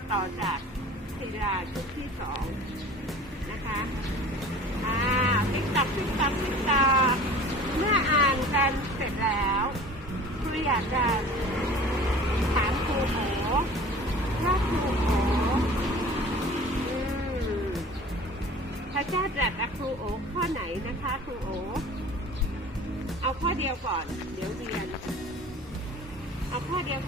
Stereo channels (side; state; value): both; normal; correlation 0.43